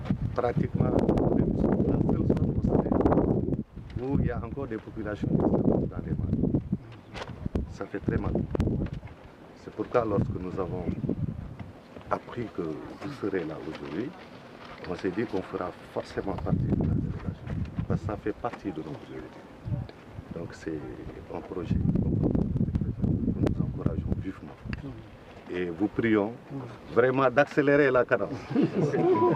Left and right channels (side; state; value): both; identical; correlation 1.00